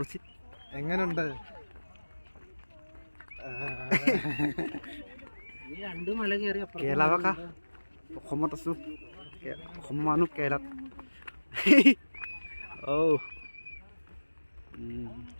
എങ്ങനെയുണ്ട് কেৰেলা অসমত আছোঁ অসমৰ মানুহ কেৰেলাত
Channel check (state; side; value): inverted; both; correlation -1.00